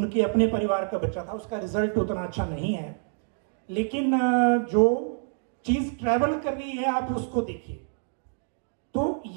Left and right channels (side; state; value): left; silent; digital silence